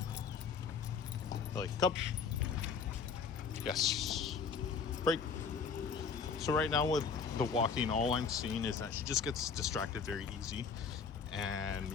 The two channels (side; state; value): right; quieter; 5.8 dB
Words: Millie, come. Yes. Break. So right now with the walking, all I'm seeing is that she just gets distracted very easy,